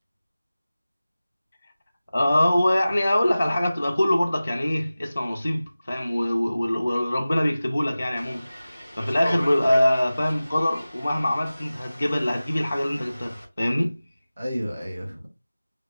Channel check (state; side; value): inverted; both; correlation -0.97